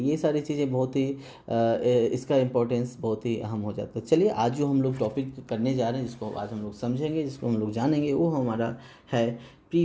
ये सारी चीज़ें बहुत ही इसका इम्पोर्टेंस बहुत ही अहम हो जाता है। चलिए आज जो हम लोग टॉपिक करने जा रहे हैं, जिसको आज हम लोग समझेंगे, जिसको हम लोग जानेंगे, वो हमारा है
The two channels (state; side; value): identical; both; correlation 1.00